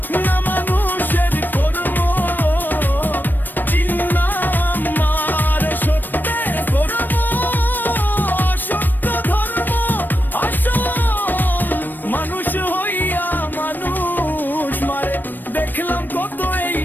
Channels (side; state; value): right; late; 0.091 ms